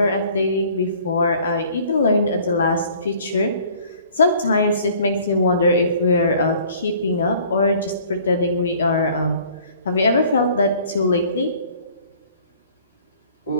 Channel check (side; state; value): both; inverted; correlation -0.54